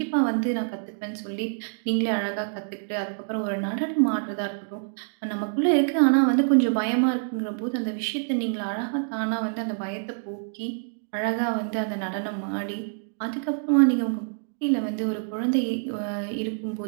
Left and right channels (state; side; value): silent; left; digital silence